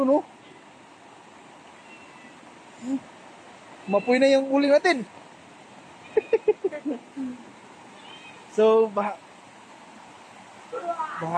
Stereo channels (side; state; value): both; identical; correlation 1.00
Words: no? Mapoy na yung uling natin. So, baha